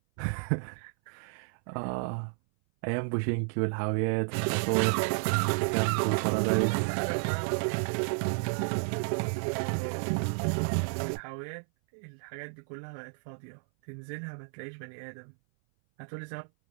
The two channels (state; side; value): silent; left; 57 dB below the other